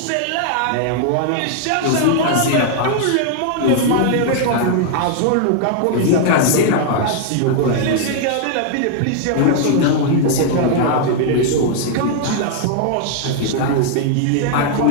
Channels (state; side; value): different; both; correlation 0.00